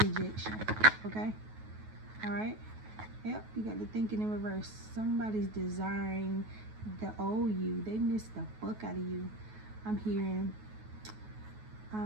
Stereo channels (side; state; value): left; late; 9.3 ms